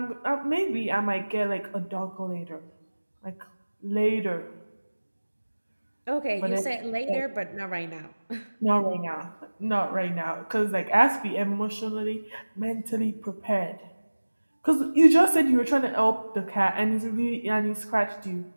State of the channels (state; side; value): inverted; both; correlation -1.00